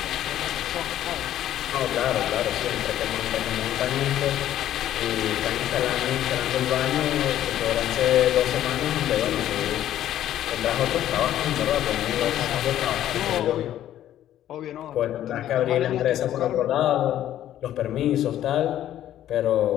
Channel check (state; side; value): quieter; right; 12.0 dB